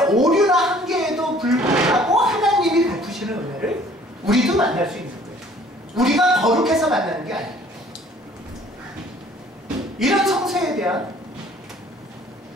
오류나 한계에도 불구하고 하나님이 베푸시는 은혜를 우리도 만날 수 있는 거예요. 우리가 거룩해서 만나는 게 아니에요. 이런 성서에 대한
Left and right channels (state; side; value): normal; both; correlation 0.55